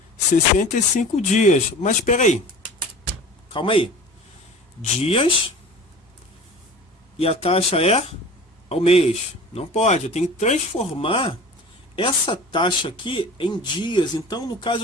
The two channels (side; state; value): both; normal; correlation 0.40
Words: 65 dias. Mas espera aí. Calma aí. Dias e a taxa é ao mês. Não pode. Eu tenho que transformar essa taxa aqui em dias. Então, no